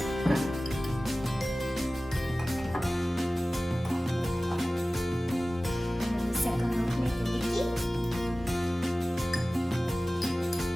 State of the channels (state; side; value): normal; both; correlation 0.97